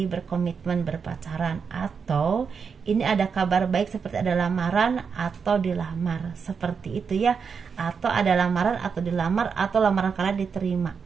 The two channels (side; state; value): left; quieter; 6.0 dB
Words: berkomitmen berpacaran, atau ini ada kabar baik seperti ada lamaran atau dilamar, seperti itu ya, atau ada lamaran atau dilamar, atau lamaran kalian diterima.